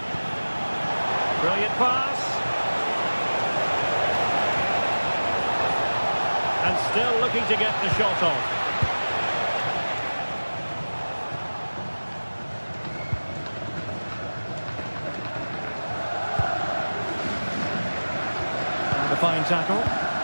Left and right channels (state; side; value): inverted; both; correlation -1.00